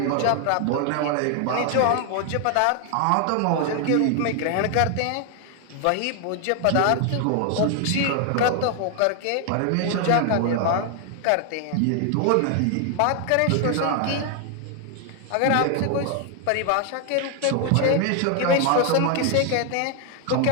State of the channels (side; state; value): both; different; correlation 0.00